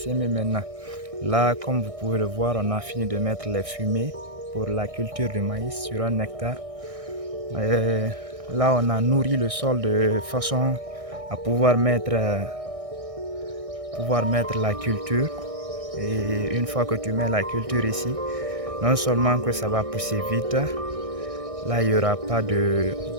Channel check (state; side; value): late; left; 1.6 ms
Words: maintenant. Là, comme vous pouvez le voir, on a fini de mettre les fumées pour la culture du maïs sur un hectare. Et là, on a nourri le sol de façon à pouvoir mettre la culture. Et une fois que tu mets la culture ici, non seulement que ça va pousser vite, là il n'y aura pas